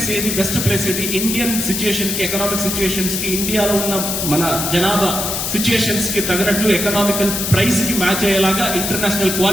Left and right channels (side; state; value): left; noise; hiss, 2 dB below the sound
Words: ఏది ఇండియన్ సిచ్యుయేషన్ కి, ఎకనామిక్ సిచ్యుయేషన్స్ కి, ఇండియాలో ఉన్న మన జనాభా సిచ్యుయేషన్స్ కి తగినట్లు ఎకనామికల్ ప్రైస్ కి మ్యాచ్ అయ్యేలాగా ఇంటర్నేషనల్